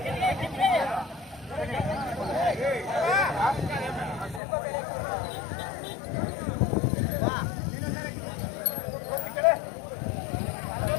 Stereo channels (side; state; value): right; drops out; at 4.4 s